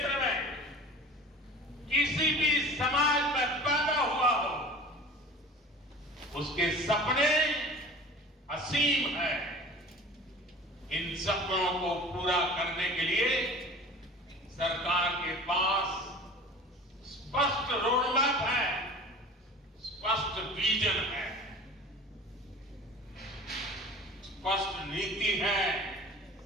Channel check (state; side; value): normal; both; correlation 0.40